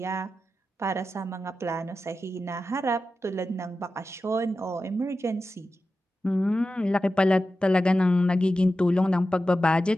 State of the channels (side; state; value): both; normal; correlation 0.92